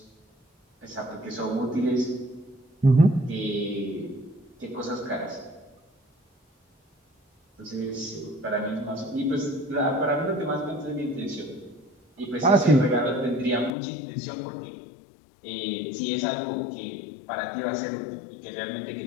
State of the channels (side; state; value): right; drops out; at 13.7 s